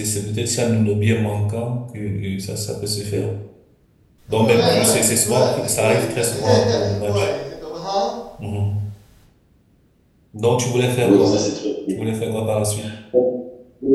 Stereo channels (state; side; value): identical; both; correlation 1.00